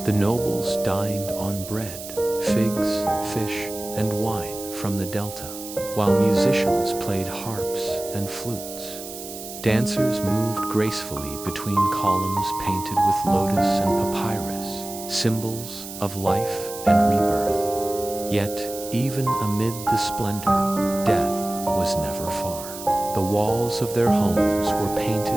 The nobles dined on bread, figs, fish, and wine from the delta, while musicians played harps and flutes. Dancers moved gracefully between columns painted with lotus and papyrus, symbols of life and rebirth. Yet, even amid the splendor, death was never far. The walls of their homes were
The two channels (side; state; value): right; noise; hiss, 12 dB below the sound